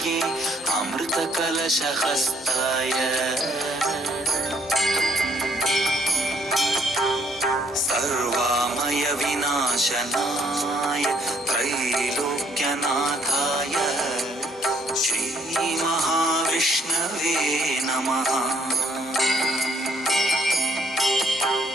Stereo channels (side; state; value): both; normal; correlation 0.66